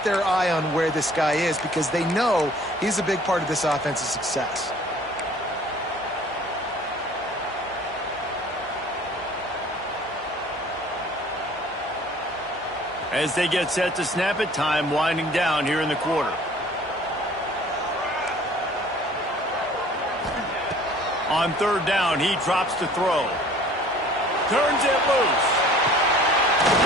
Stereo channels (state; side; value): normal; both; correlation 0.51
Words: their eye on where this guy is because they know he's a big part of this offense's success. As they get set to snap it, time winding down here in the quarter. On 3rd down, he drops to throw. Turns it loose.